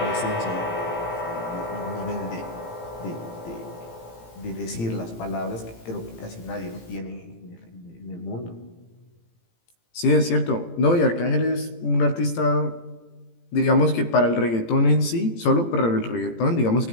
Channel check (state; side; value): late; right; 18 ms